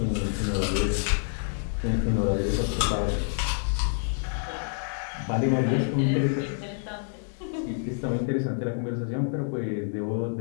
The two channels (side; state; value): right; silent; digital silence